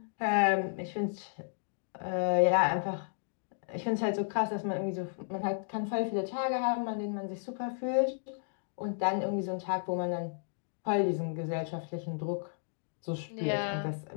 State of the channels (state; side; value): silent; right; digital silence